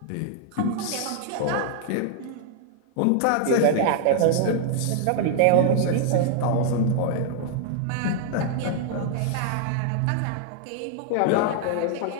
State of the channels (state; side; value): different; both; correlation 0.00